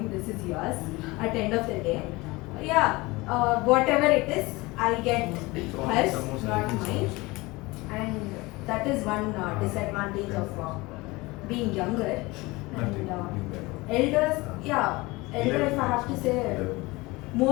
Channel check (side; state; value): right; quieter; 22.6 dB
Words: This is yours. At the end of the day, yeah. Whatever it is, I get hers, not mine. And that is one disadvantage of being younger. And elders, yeah, elder. If I have to say,